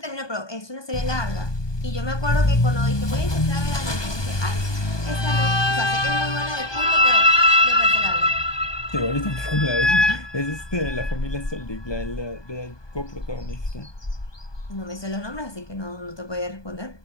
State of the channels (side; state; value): right; late; 1.2 ms